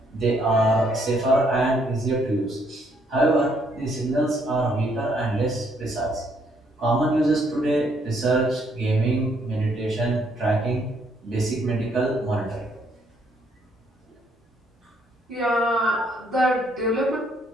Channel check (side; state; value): both; normal; correlation 0.69